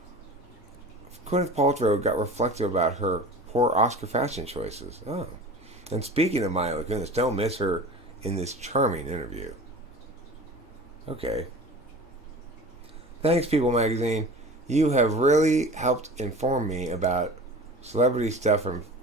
Gwyneth Paltrow got reflective about her poor Oscar fashion choices. Oh. And speaking of Mila Kunis, don't miss her in this charming interview. Okay. Thanks, People Magazine. You have really helped inform me about celebrity stuff from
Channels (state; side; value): normal; both; correlation 0.37